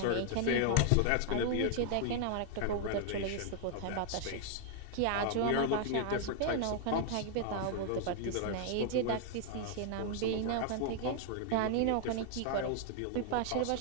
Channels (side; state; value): both; different; correlation 0.00